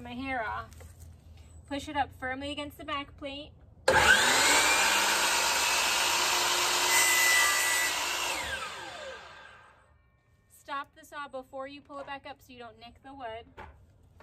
my hair off. Push it up firmly against the back plate. Stop the saw before you pull it back up so you don't nick the wood.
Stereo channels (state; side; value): identical; both; correlation 1.00